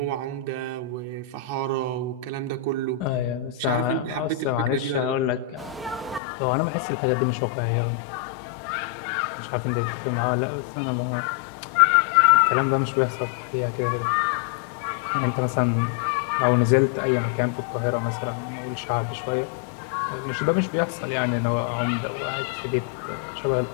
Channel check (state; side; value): drops out; right; at 6.2 s